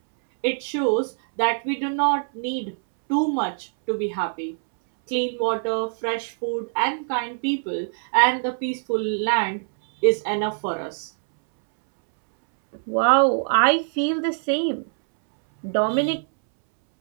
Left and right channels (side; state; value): left; silent; 63 dB below the other